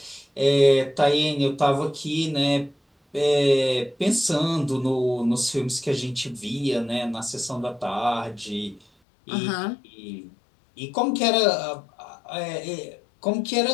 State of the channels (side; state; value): right; drops out; at 8.8 s